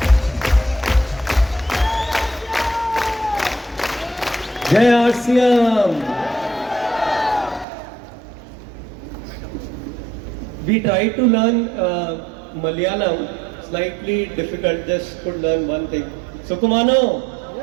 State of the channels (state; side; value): drops out; left; at 7.7 s